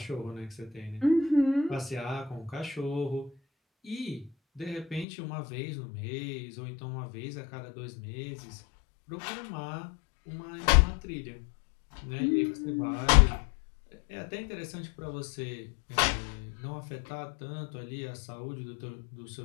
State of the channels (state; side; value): drops out; right; at 5.1 s